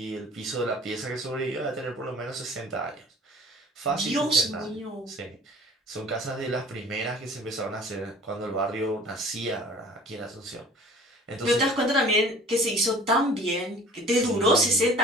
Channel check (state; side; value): normal; both; correlation 0.47